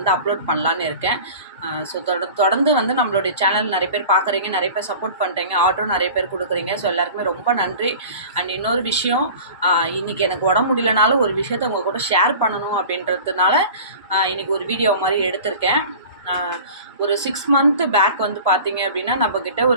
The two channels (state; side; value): inverted; both; correlation -0.39